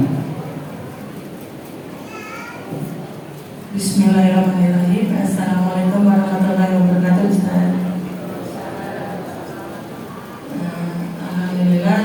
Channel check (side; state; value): both; identical; correlation 1.00